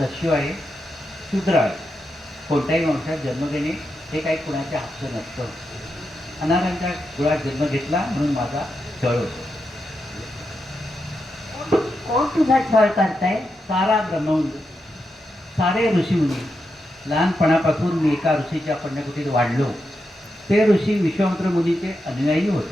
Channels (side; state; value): both; normal; correlation 0.86